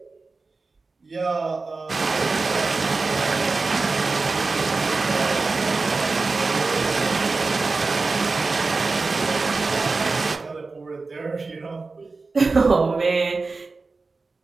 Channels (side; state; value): left; quieter; 3.9 dB